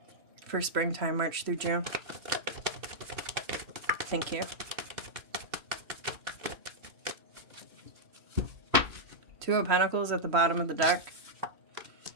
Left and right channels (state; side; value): late; left; 3.0 ms